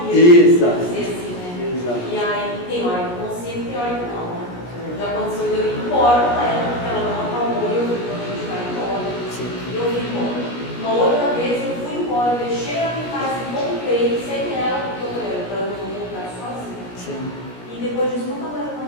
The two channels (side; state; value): right; late; 17 ms